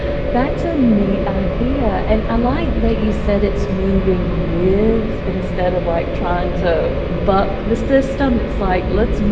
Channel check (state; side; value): identical; both; correlation 1.00